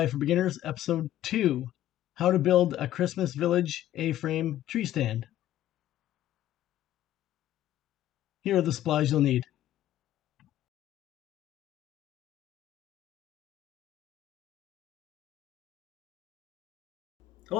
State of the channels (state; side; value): quieter; right; 13.1 dB